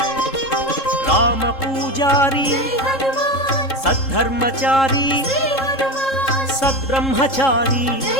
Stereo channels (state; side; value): late; right; 3.7 ms